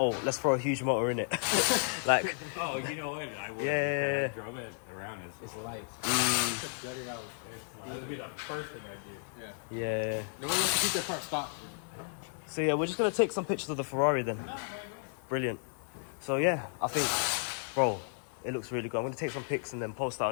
let's throw a huge motor in it. Like, Oh, you know what? I would. Yeah. I drove it around. It's light. Gutted out. That would be the first thing I do. Yeah. yeah. No one wants to keep their car stock. So yeah, we're just gonna take some pictures of the Ferrari then. Brilliant. So yeah, I think, bro, it looks really good. I'm gonna take some pics and then post that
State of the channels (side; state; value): right; silent; 56 dB below the other